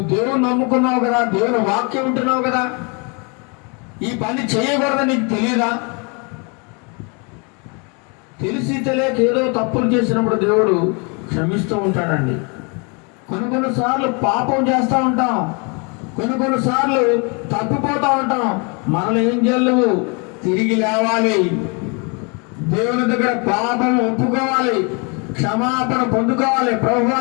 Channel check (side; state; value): right; quieter; 33.2 dB